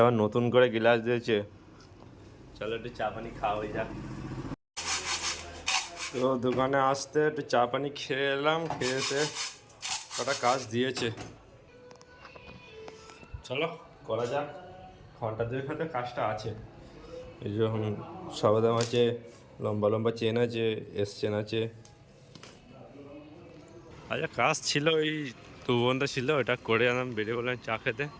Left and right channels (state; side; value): identical; both; correlation 1.00